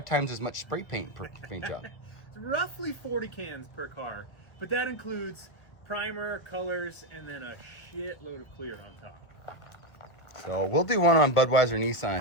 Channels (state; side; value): late; right; 1.1 ms